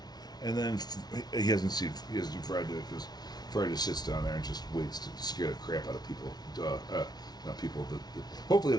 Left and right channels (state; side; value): late; right; 0.19 ms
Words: And then he hasn't seen Fry do it because Fry just sits down there and just waits to scare the crap out of people. Not people. Hopefully